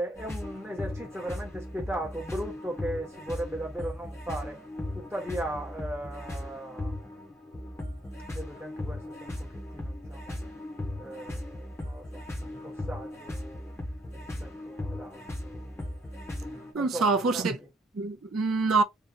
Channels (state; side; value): normal; both; correlation 0.70